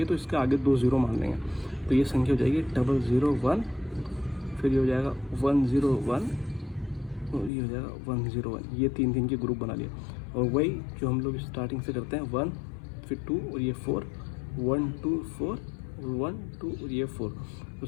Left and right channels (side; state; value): right; drops out; at 7.5 s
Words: है तो इसके आगे 2 0 मान लेंगे। तो ये संख्या हो जाएगी 001, फिर ये हो जाएगा 101, और ये हो जाएगा 101। ये 3 के ग्रुप बना लिए। और वही जो हम लोग स्टार्टिंग से करते हैं 1, फिर 2, और ये 4, 1 2 4, 1 2, और ये 4। तो